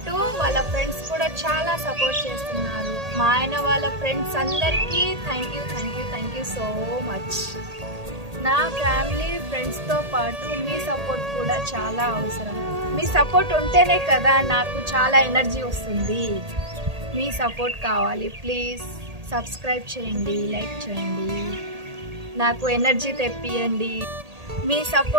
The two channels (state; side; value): late; left; 1.8 ms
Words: వాళ్ళ ఫ్రెండ్స్ కూడా చాలా సపోర్ట్ చేస్తున్నారు. మా ఆయన వాళ్ళ ఫ్రెండ్స్ అందరికీ థ్యాంక్ యూ సో మచ్. నా ఫ్యామిలీ ఫ్రెండ్స్తో పాటు మీ సపోర్ట్ కూడా చాలా అవసరం. మీ సపోర్ట్ ఉంటేనే కదా నాకు చాలా ఎనర్జీ వస్తుంది. మీ సపోర్ట్ కావాలి. ప్లీజ్ సబ్స్క్రైబ్ చేయండి, లైక్ చేయండి, నాకు ఎనర్జీ తెప్పియండి. మీ